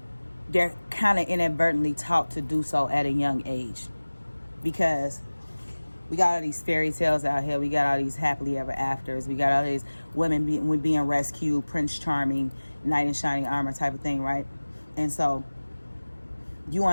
they're kind of inadvertently taught to do so at a young age. Because we got all these fairy tales out here. We got all these happily ever afters. We got all these women being rescued, Prince Charming, knight in shining armor type of thing, right? And so you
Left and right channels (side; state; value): both; inverted; correlation -1.00